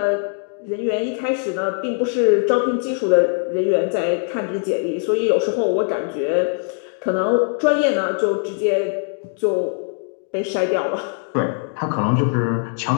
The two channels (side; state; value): right; silent; 57 dB below the other